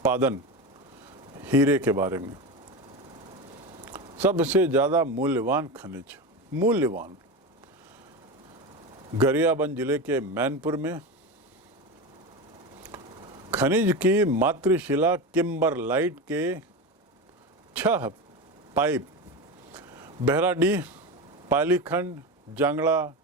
हीरे के बारे में। सबसे ज़्यादा मूल्यवान खनिज मूल्यवान। गरियाबंद जिले के मैनपुर में खनिज की मातृशिला किम्बरलाइट के 6 पाइप बहराडीह, पालीखंड, जांगड़ा,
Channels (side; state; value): both; normal; correlation 0.21